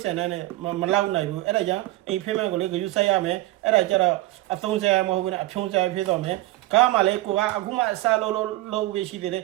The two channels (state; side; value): quieter; left; 18.0 dB